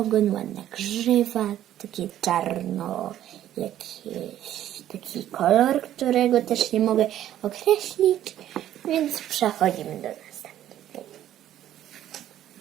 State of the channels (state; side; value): quieter; left; 12.0 dB